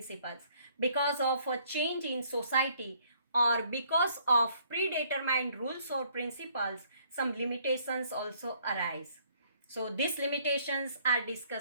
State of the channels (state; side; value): inverted; both; correlation -0.64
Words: Because of a change in society or because of predetermined rules or principles, some limitations also arise. So these limitations are